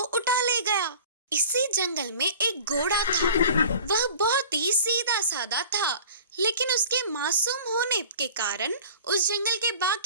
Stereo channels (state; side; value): inverted; both; correlation -0.43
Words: ले गया। इसी जंगल में एक घोड़ा था। वह बहुत ही सीधा साधा था, लेकिन उसके मासूम होने के कारण उस जंगल के